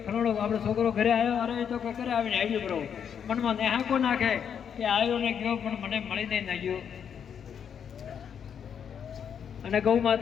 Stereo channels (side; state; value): right; quieter; 7.9 dB